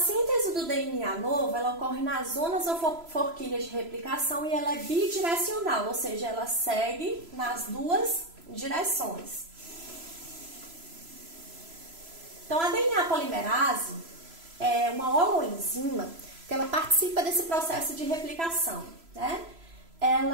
do DNA novo, ela ocorre nas zonas ou forquilhas de replicação e ela é bidirecional, ou seja, ela segue nas duas direções. Então, a DNA polimerase é uma holoenzima que ela participa desse processo de replicação, né?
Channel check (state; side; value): late; left; 3.0 ms